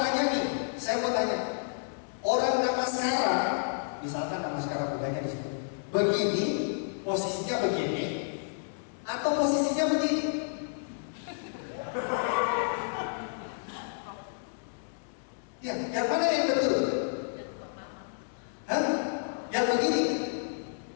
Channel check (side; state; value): right; silent; digital silence